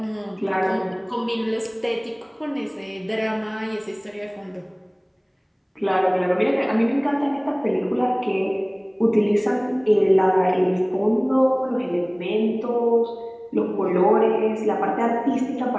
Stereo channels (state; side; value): identical; both; correlation 1.00